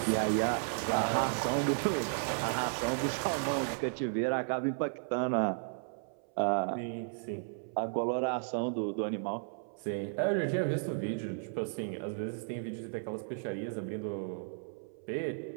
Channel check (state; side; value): silent; left; 55 dB below the other